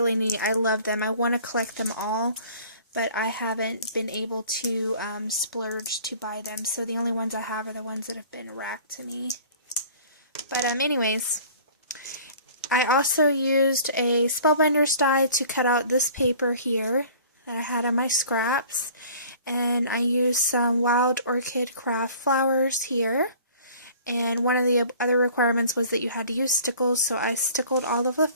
neat. I love them. I want to collect them all, but I haven't been able to splurge to buy them. So the only ones I have are the ones that have been racked to me. But anyways, I also used a Spellbinder's die to cut out this paper here that I had on my scraps. And I used some Wild Orchid Craft flowers here. And one of the other requirements was that you had to use stickles, so I stickled all of the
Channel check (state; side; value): inverted; both; correlation -0.48